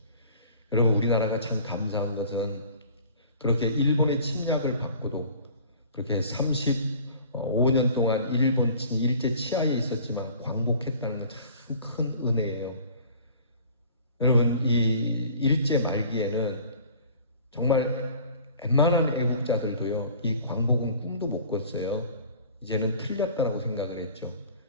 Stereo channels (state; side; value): inverted; both; correlation -0.47